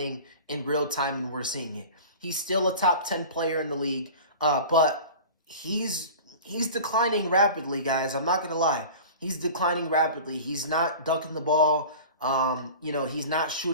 in real time, and we're seeing it. He's still a top 10 player in the league, but he's declining rapidly, guys. I'm not going to lie. He's declining rapidly. He's not dunking the ball. He's not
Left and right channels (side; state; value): both; inverted; correlation -0.37